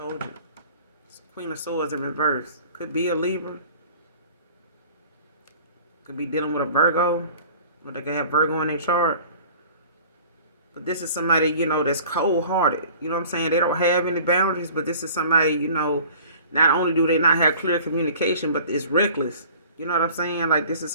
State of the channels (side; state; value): both; inverted; correlation -0.47